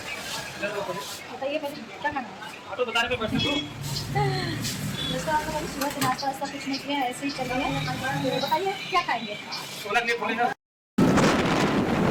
बताइए पहले, क्या खाना है? ऑटो बताने पे बैठे तो दोस्तों आप लोग सुबह से नाश्ता वास्ता कुछ नहीं किया, ऐसे ही चल रहे हैं। बताइए क्या खाएंगे। छोला के लिए बोले हैं।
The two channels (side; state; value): both; identical; correlation 1.00